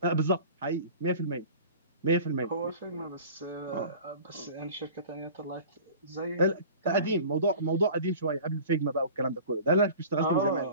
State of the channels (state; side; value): inverted; both; correlation -0.41